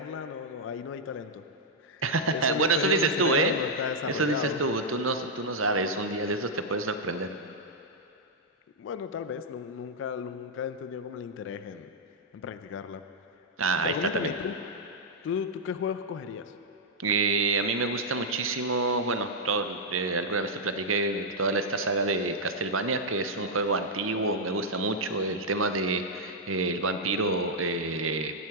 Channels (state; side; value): normal; both; correlation -0.05